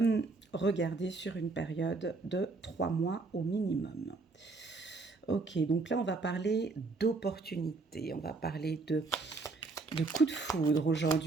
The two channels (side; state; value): left; quieter; 3.8 dB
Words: regarder sur une période de 3 mois au minimum. Ok, donc là, on va parler d'opportunités, on va parler de coups de foudre